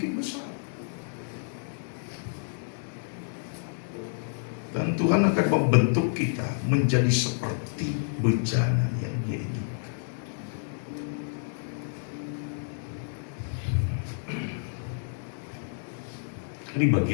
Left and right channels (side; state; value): right; silent; digital silence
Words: besar. Dan Tuhan akan membentuk kita menjadi seperti bejana yang Dia inginkan. Ini